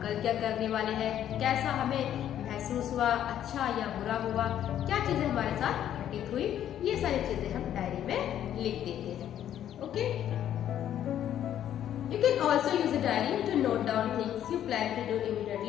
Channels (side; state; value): right; quieter; 10.8 dB